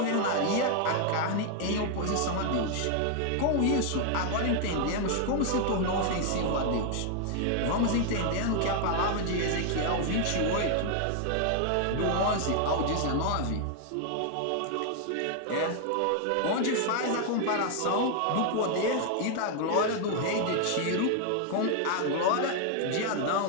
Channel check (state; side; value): different; both; correlation 0.00